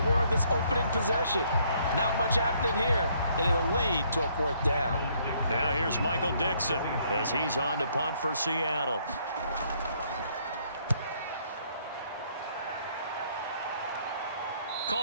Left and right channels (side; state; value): both; inverted; correlation -0.67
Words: on this opening possession. Not much happening here, and it'll lead to a 4th down. Now here's Michael Dixon as he's on to punt for Seattle.